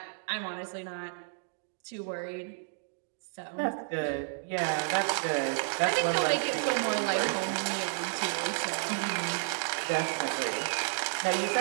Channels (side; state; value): left; silent; 57 dB below the other